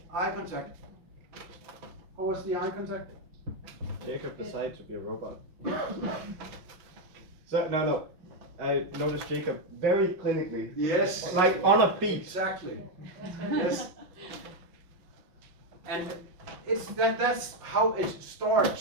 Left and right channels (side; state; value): left; late; 5.7 ms